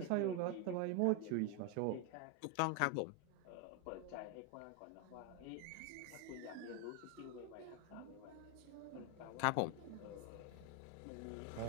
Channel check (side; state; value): both; different; correlation 0.01